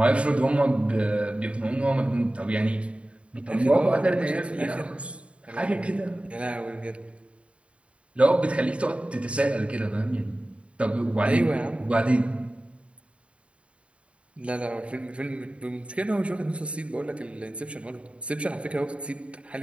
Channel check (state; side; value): late; left; 0.061 ms